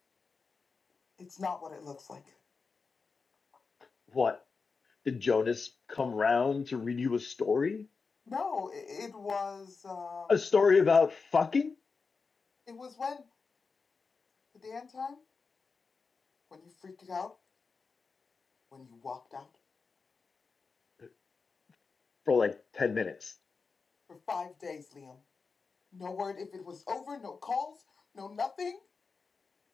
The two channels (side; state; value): right; quieter; 4.7 dB